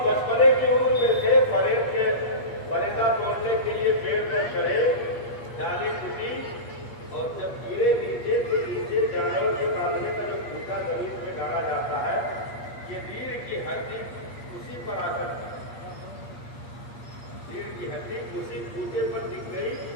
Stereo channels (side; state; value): right; late; 8.4 ms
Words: بچپنے کی عمر میں تھے، پریڈ کے فریضہ توڑنے کے لیے پیڑ میں چڑھے، ڈالی ٹوٹی اور جب گرے نیچے تو نیچے جانور کے کاٹنے کا جو پھوٹا زمین میں ڈالا جاتا ہے، یہ ریڑھ کی ہڈی اسی پر آ کر ریڑھ کی ہڈی اسی پھوٹے پر دکھ گئی